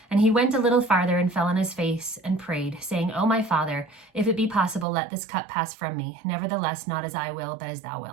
"And he went a little farther and fell on his face and prayed, saying, O my Father, if it be possible, let this cup pass from me. Nevertheless, not as I will, but as thou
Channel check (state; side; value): drops out; left; at 4.9 s